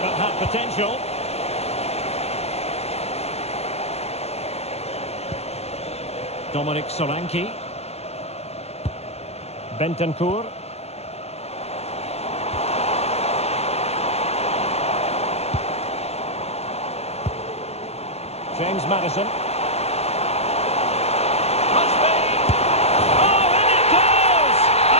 that had potential. Dominic Solanke. Bentancur. James Maddison. Must be. Oh, and it goes!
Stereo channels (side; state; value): right; late; 0.30 ms